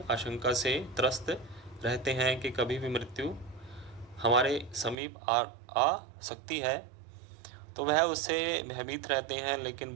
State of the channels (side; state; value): left; drops out; at 5.0 s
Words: आशंका से त्रस्त रहते हैं कि कभी भी मृत्यु हमारे समीप आ सकती है। तो वह उससे भयभीत रहते हैं। लेकिन